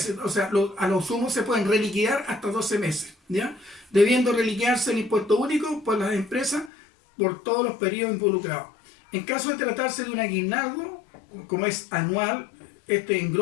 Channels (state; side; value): drops out; right; at 6.7 s